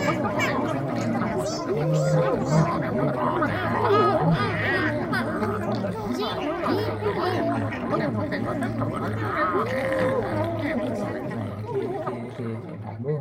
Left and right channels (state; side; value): identical; both; correlation 1.00